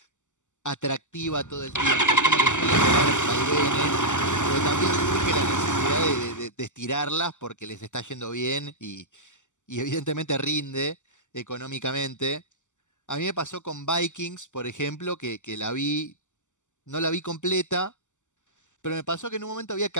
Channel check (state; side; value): late; right; 0.85 ms